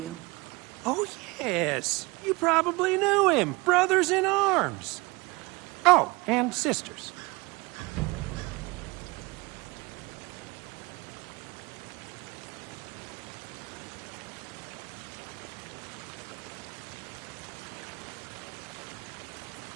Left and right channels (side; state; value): left; quieter; 24.5 dB